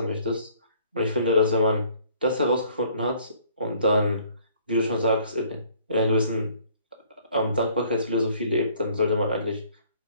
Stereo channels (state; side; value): inverted; both; correlation -0.59